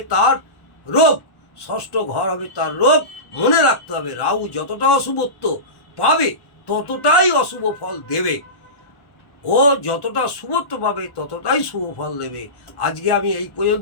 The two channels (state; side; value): late; right; 1.1 ms